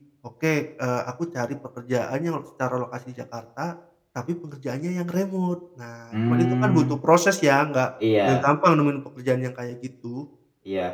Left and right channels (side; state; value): both; identical; correlation 1.00